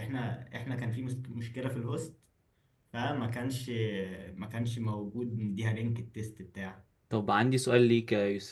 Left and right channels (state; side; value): identical; both; correlation 1.00